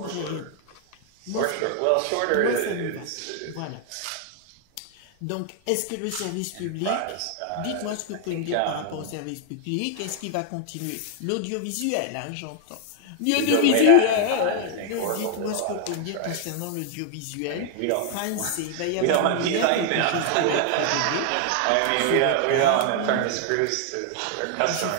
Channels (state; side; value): different; both; correlation 0.00